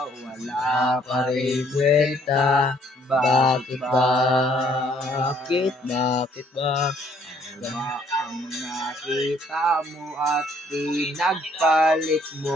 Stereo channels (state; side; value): normal; both; correlation 0.64